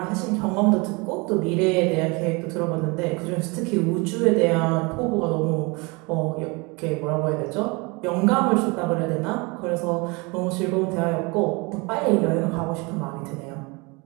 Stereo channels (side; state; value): left; quieter; 27.7 dB